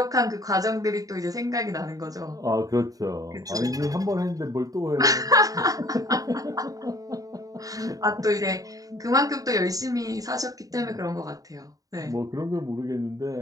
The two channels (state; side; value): late; left; 0.17 ms